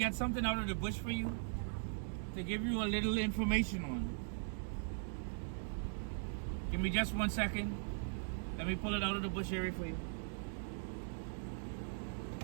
something out of the bush for you, to give you a little information on. Give me just 1 second. Let me pull it out of the bush area for you.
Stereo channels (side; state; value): left; silent; digital silence